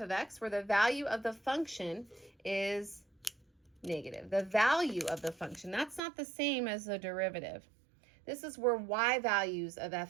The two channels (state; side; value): drops out; left; at 6.0 s